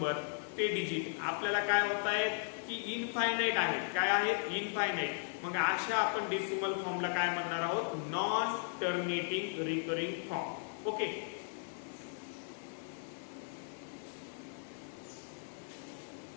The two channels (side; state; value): right; silent; digital silence